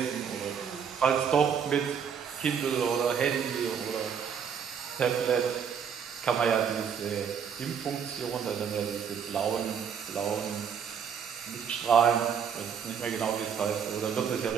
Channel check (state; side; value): quieter; left; 7.3 dB